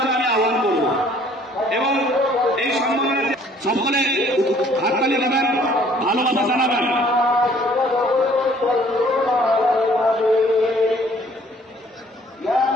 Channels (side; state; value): both; normal; correlation 0.58